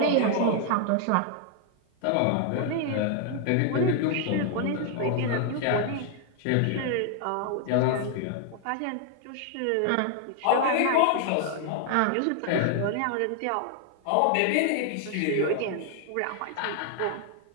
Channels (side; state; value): both; different; correlation 0.00